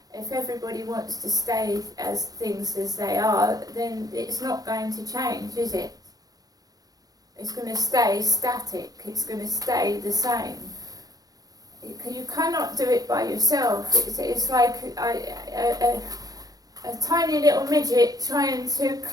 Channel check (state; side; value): late; left; 0.18 ms